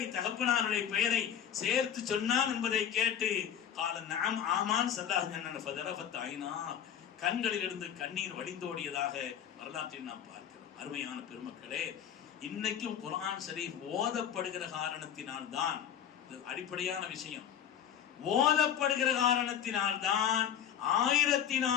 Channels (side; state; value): right; quieter; 9.2 dB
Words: தகப்பனாருடைய பெயரை சேர்த்து சொன்னான் என்பதை கேட்டு கால நஅம் ஆமான் ஸல்லல்லாஹு அலைஹி வஸல்லம் ஃபதரஃபத் ஐனா, கண்களிலிருந்து கண்ணீர் வடிந்தோடியதாக வரலாற்றில் நாம் பார்க்கிறோம். அருமையான பெருமக்களே, இன்னைக்கும் குர்ஆன் ஷரீஃப் ஓதப்படுகிற காரணத்தினால் தான், அடிப்படையான விஷயம், ஓதப்படுகிற காரணத்தினால் தான்